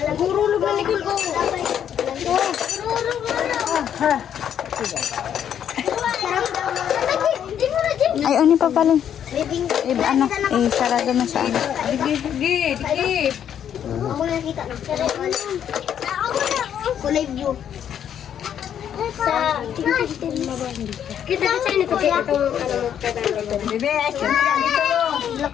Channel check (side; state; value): right; quieter; 9.3 dB